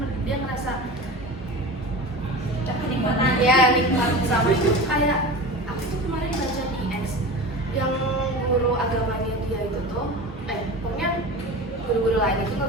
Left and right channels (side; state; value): both; normal; correlation 0.31